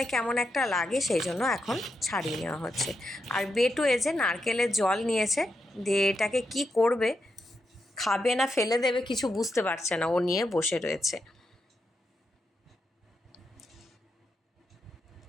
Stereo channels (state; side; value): normal; both; correlation 0.85